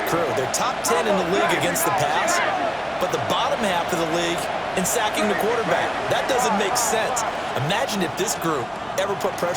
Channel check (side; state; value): both; identical; correlation 1.00